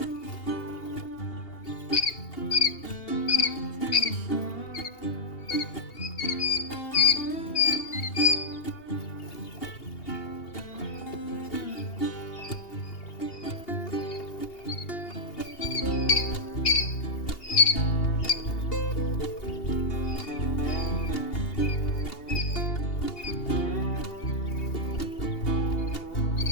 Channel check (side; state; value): right; late; 2.8 ms